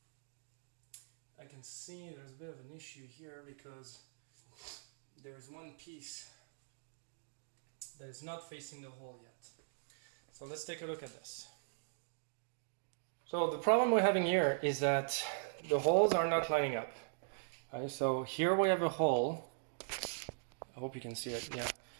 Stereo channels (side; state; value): left; silent; digital silence